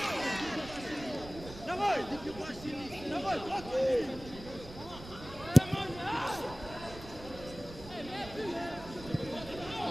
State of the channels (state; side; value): noise; right; rumble, 15 dB below the sound